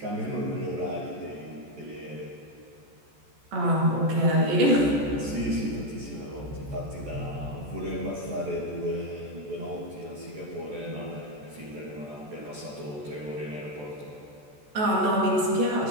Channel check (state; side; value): late; left; 14 ms